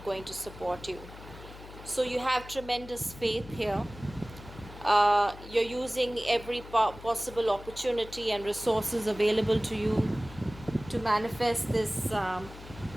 going to support you. So you have tremendous faith here. You're using every possible opportunity and resources available to you to manifest this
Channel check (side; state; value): left; noise; hum, 16 dB below the sound